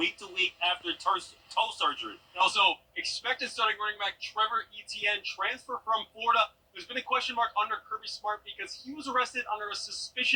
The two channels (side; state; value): both; identical; correlation 1.00